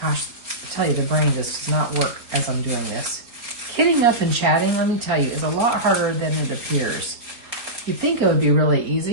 Gosh, I tell you, the brain just does not work as I'm doing this. Kidding up and chatting, let me tell you, is a lot harder than it appears. You'd think it would be really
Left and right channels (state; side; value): late; left; 4.3 ms